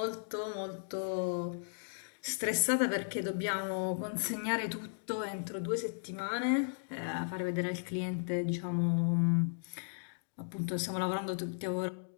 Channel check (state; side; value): silent; right; digital silence